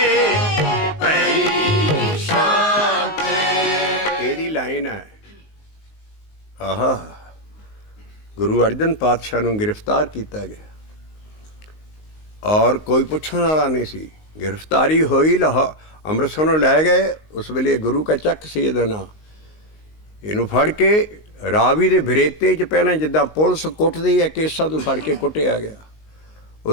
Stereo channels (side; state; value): right; late; 19 ms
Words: ਪਈ ਸ਼ਾਂਤੇ। ਇਹਦੀ ਲਾਈਨ ਹੈ। ਆਹਾ, ਗੁਰੂ ਅਰਜਨ ਪਾਤਸ਼ਾਹ ਨੂੰ ਗ੍ਰਿਫਤਾਰ ਕੀਤਾ ਗਿਆ ਔਰ ਕੋਈ ਪੁੱਛਣ ਵਾਲਾ ਨਹੀਂ ਸੀ। ਗ੍ਰਿਫਤਾਰੀ ਹੋਈ, ਅੰਮ੍ਰਿਤਸਰ ਨੂੰ ਲੈ ਗਏ। ਉਸ ਵੇਲੇ ਗੁਰੂ ਕਾ ਚੱਕ ਸੀ ਇਹਦਾ ਨਾਂ। ਇਹਨੂੰ ਫੜ ਕੇ ਰਾਵੀ ਦੇ ਬਰੇਤੇ 'ਚ ਪਹਿਲਾਂ ਜਿੱਦਾਂ ਪੁਲਿਸ ਕੁੱਟਦੀ ਹੈ ਕੇਸਾਂ ਤੋਂ ਫੜ ਕੇ ਕੁੱਟਿਆ ਗਿਆ।